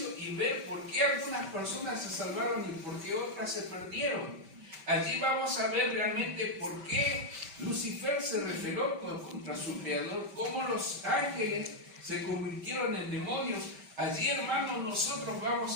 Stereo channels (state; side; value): late; left; 5.1 ms